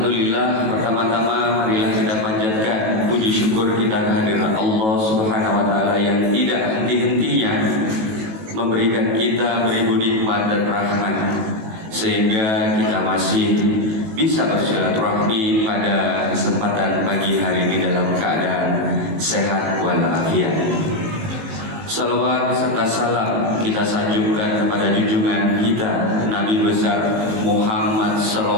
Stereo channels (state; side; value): late; left; 18 ms